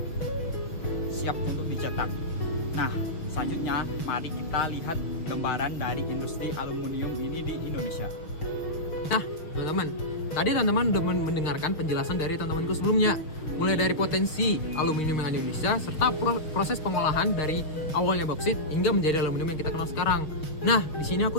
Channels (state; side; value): late; right; 6.5 ms